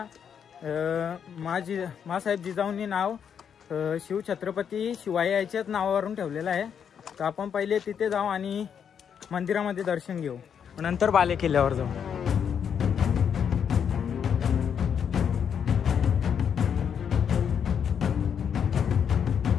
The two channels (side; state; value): right; quieter; 7.7 dB